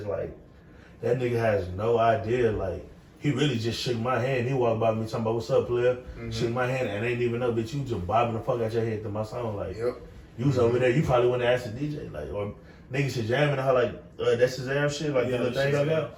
like, that nigga has no idea. Like, he really just shook my hand. He walked by me talking about, what's up, player? Shook my hand and ain't even know, bitch, you just bobbing the fuck out your head to my song. Like, you was over there, you probably wouldn't ask the DJ. Like, or niggas should jamming her like, that's his damn shit, like the little thing I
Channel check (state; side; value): identical; both; correlation 1.00